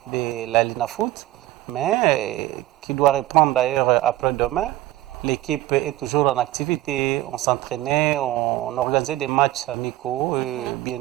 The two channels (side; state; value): left; quieter; 16.4 dB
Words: de la Lina Foot, mais qui doit reprendre d'ailleurs après-demain. L'équipe est toujours en activité, on s'entraînait, on organisait des matchs amicaux.